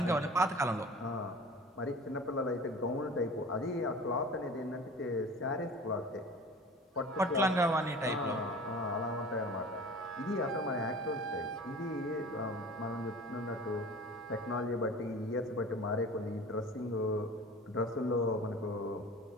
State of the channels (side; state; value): both; normal; correlation 0.39